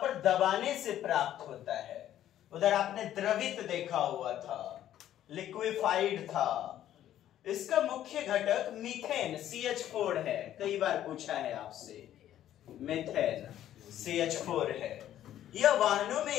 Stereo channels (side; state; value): right; quieter; 11.9 dB